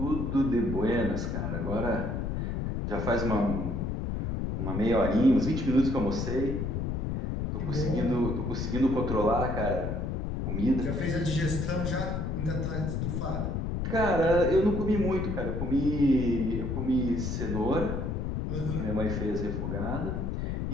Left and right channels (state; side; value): noise; left; rumble, 2 dB below the sound